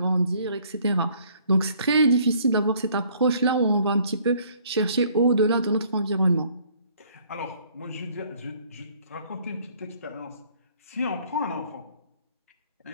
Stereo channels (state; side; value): inverted; both; correlation -0.60